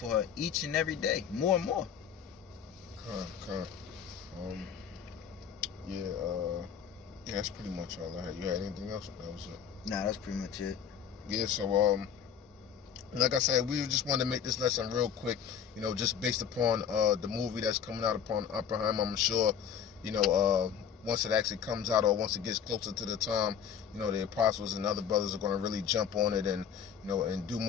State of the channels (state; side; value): quieter; right; 8.0 dB